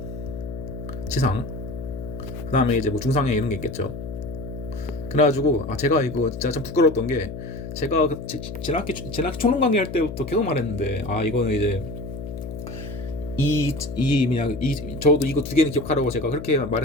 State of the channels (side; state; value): left; noise; hum, 9 dB below the sound